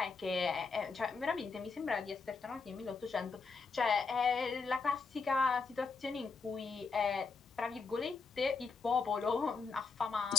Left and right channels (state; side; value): quieter; right; 4.6 dB